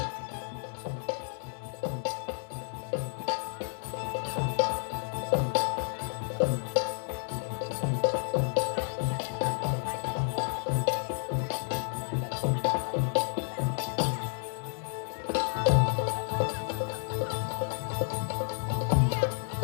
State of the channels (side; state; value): right; silent; digital silence